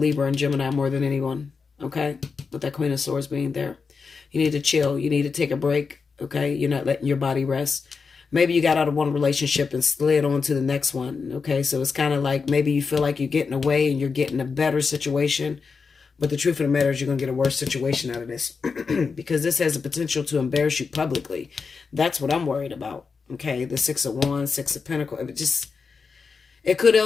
and Gemini more than anyone, okay? With that Queen of Swords being there. You need to chill. You need to take a break. Okay, you're not letting your body rest. Maybe you got out of one relationship and slid on to the next one. Okay, so it's kind of like maybe you feel like you're getting away and you're getting a better situation. But the truth of the matter is you're going to get a worse situation out of this. Because this has the potential to embarrass you publicly. That's what I'm worried about. Okay, the Six of Wands, Six of Pentacles. It could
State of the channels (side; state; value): right; quieter; 5.1 dB